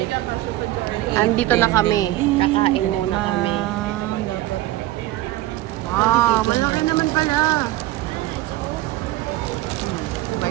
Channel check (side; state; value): left; quieter; 16.0 dB